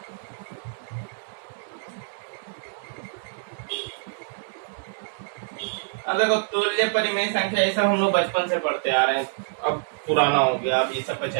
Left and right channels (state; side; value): silent; left; digital silence